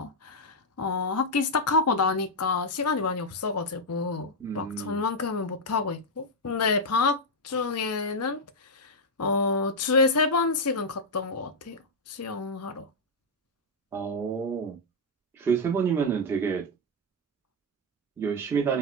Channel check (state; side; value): normal; both; correlation -0.01